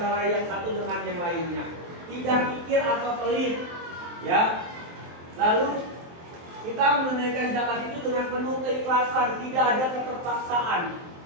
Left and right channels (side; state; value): left; late; 23 ms